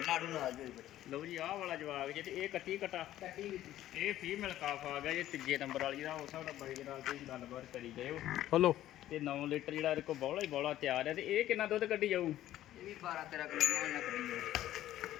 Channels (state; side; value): quieter; right; 13.4 dB